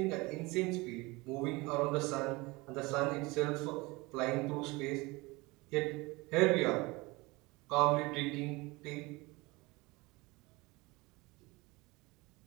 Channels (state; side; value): quieter; left; 23.6 dB